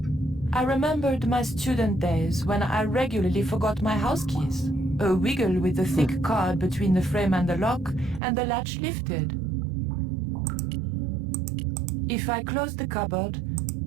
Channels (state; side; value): drops out; left; at 8.2 s